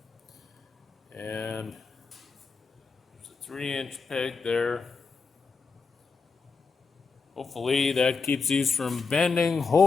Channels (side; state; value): right; quieter; 4.7 dB